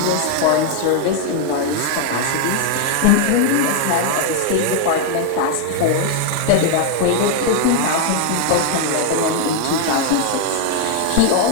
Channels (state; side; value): different; both; correlation 0.00